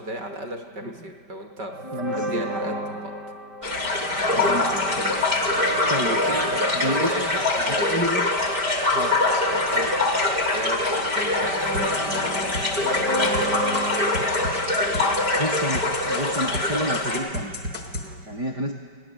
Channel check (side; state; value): left; late; 5.1 ms